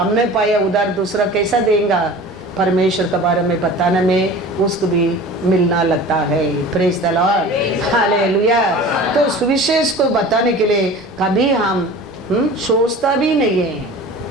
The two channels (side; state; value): both; normal; correlation 0.39